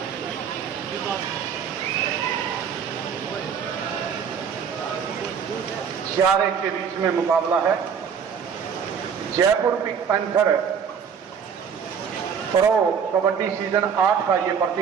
चार एक के बीच में मुकाबला है। Jaipur pink panther pro kabaddi season 8 का ये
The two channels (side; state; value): left; quieter; 7.0 dB